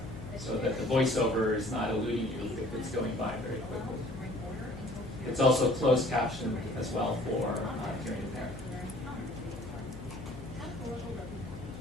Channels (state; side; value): noise; left; hum, 13 dB below the sound